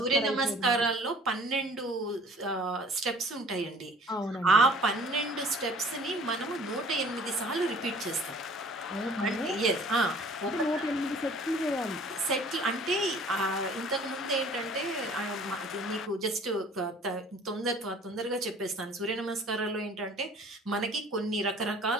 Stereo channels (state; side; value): normal; both; correlation 0.51